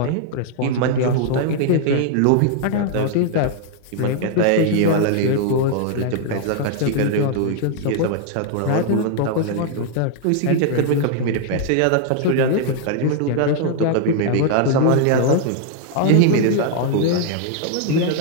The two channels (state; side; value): different; both; correlation 0.00